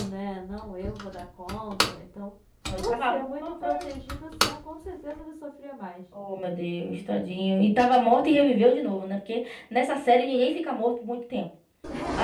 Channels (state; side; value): identical; both; correlation 1.00